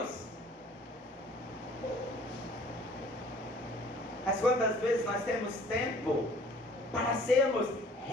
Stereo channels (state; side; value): normal; both; correlation 0.53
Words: Mas quantas vezes nós temos tempo para sermos